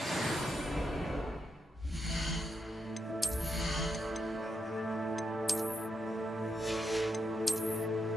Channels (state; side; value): normal; both; correlation 0.83